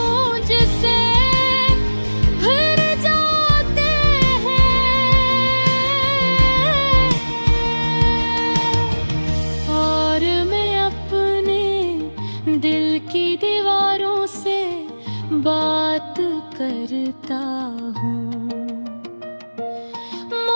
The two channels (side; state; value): both; inverted; correlation -1.00